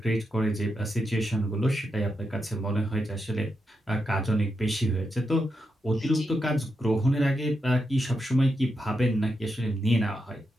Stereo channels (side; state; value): both; normal; correlation 0.85